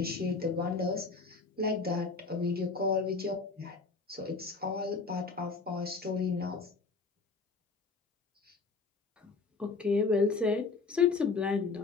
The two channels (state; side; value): quieter; right; 4.3 dB